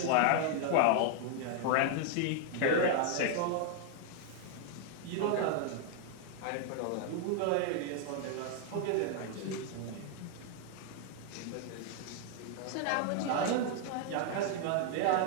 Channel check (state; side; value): different; both; correlation 0.00